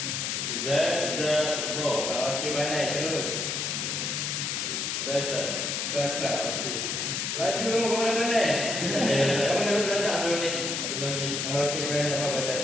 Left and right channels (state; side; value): noise; left; hiss, 1 dB below the sound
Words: Okey, pandai. Terus. Sasa. Okey. Laju kamu mana pandai? Kamu dapat belajar sebelum ni? Okey, pandai dapat baca